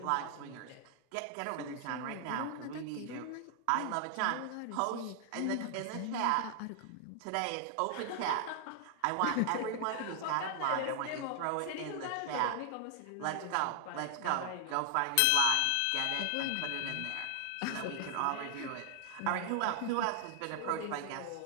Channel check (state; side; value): different; both; correlation 0.00